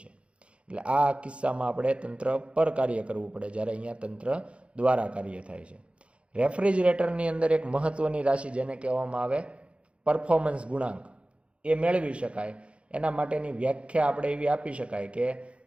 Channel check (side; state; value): left; late; 0.060 ms